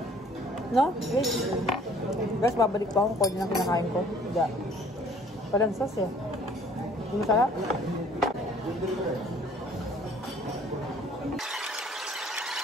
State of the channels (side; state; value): both; normal; correlation 0.55